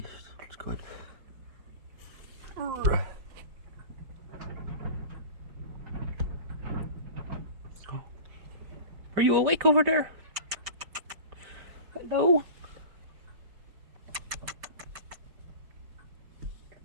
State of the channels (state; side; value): late; left; 5.0 ms